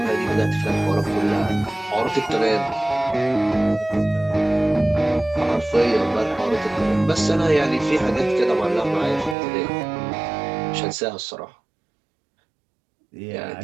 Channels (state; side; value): drops out; left; at 9.3 s